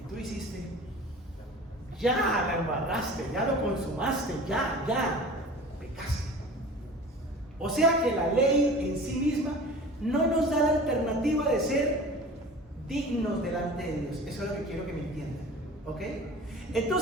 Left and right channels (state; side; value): normal; both; correlation 0.39